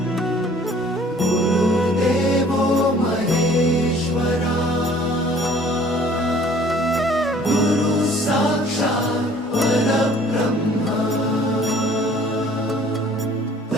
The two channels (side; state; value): both; normal; correlation 0.54